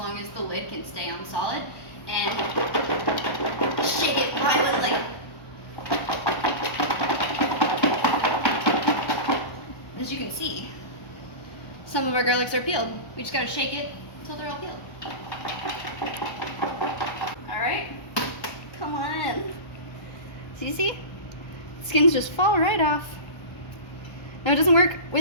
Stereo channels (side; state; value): right; late; 1.1 ms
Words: as the lid can stay on solid. And shake it violently. As you can see, some of our garlics are peeled. We just gotta shake it until they're all peeled. Alright, come on. So you see? Skins just fall right off. Now it doesn't work